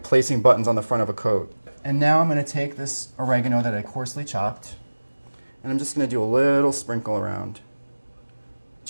placing buttons on the front of a coat. And now I'm going to take this oregano that I coarsely chopped, and I'm just going to do a little sprinkle around.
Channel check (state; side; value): inverted; both; correlation -1.00